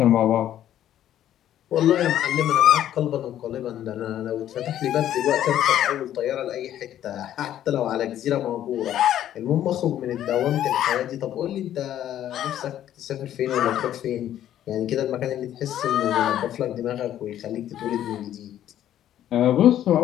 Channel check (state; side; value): quieter; right; 11.6 dB